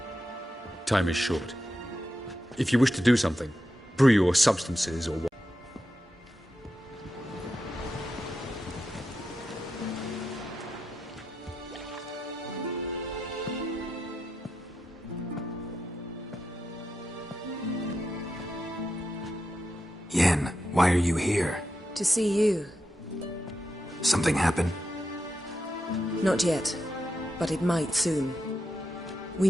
Time is short. If you wish to do something, brew your substances or what. Yen, why are you here? To see you. Something happened? Not yet, but it might soon. We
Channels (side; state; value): both; normal; correlation 0.87